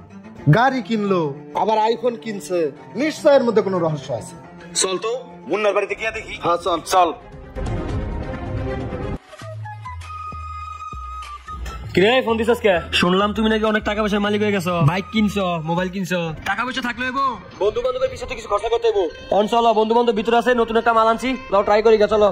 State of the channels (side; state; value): both; identical; correlation 1.00